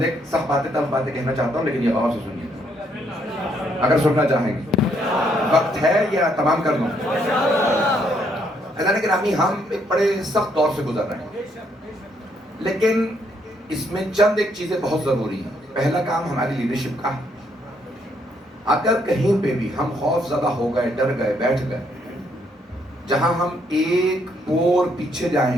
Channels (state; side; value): normal; both; correlation 0.71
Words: ایک سخت باتیں تلخ باتیں کہنا چاہتا ہوں, لیکن یہ غور سے سنیے اگر سننا چاہیں گے. وقت ہے یا تمام کر دوں؟ اللہ نے گرامی, ہم ایک بڑے سخت دور سے گزر رہے ہیں, لیکن اس میں چند ایک چیزیں بہت ضروری ہیں. پہلا کام ہماری لیڈرشپ کا ہے. اگر کہیں پہ بھی ہم خوف زدہ ہو گئے, ڈر گئے, بیٹھ گئے, جہاں ہم ایک پور پیچھے